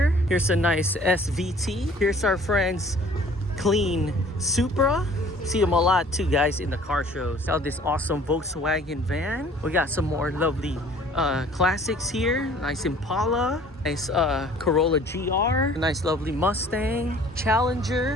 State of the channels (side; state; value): both; normal; correlation 0.52